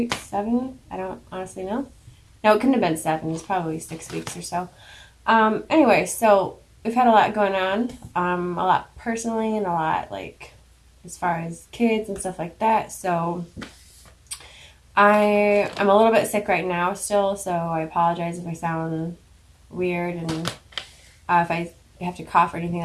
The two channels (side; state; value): both; identical; correlation 1.00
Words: 7. I don't honestly know. No, it couldn't have been 7. It's probably 6 weeks or so. Anyway, so we've had a lot going on, a lot personally and a lot like as far as kids and stuff like that. So I'm a little bit sick right now still, so I apologize if I sound weird and if I have to cough or anything